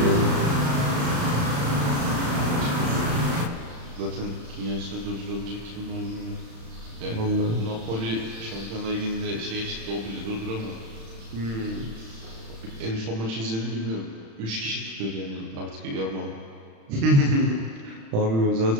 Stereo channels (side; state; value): left; late; 36 ms